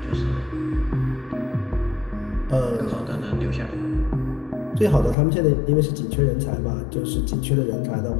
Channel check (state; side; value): drops out; right; at 5.2 s